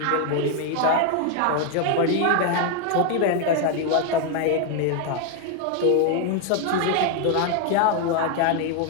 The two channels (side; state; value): both; different; correlation 0.01